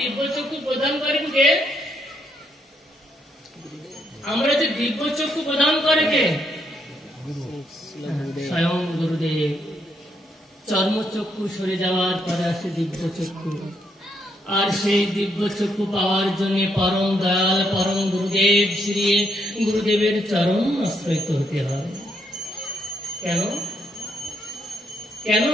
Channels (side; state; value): both; normal; correlation 0.75